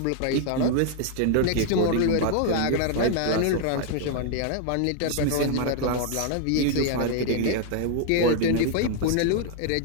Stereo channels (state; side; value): different; both; correlation 0.00